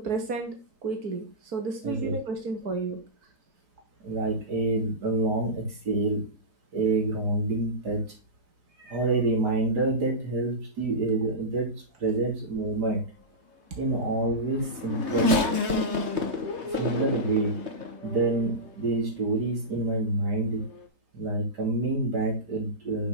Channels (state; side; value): late; left; 3.2 ms